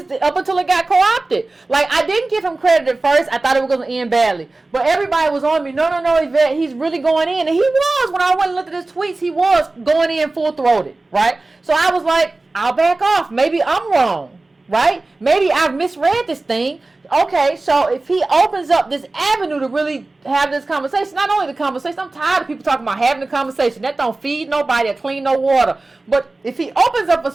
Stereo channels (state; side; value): quieter; left; 3.2 dB